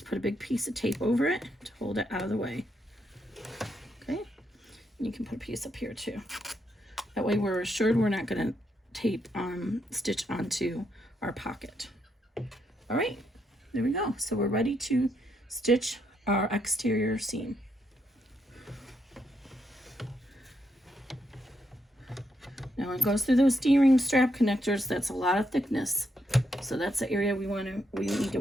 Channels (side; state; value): both; normal; correlation 0.78